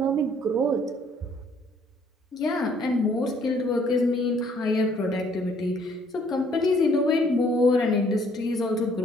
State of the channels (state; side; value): normal; both; correlation 0.63